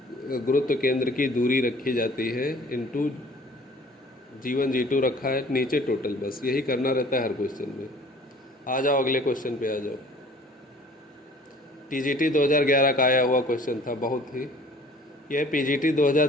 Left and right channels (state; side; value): normal; both; correlation 0.51